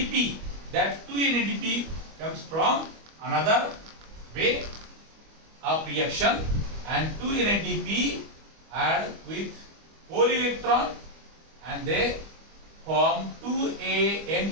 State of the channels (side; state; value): left; late; 25 ms